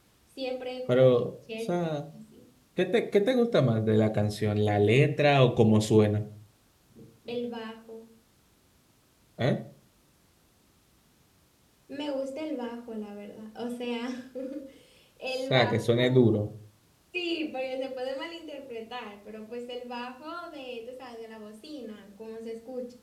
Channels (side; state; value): both; identical; correlation 1.00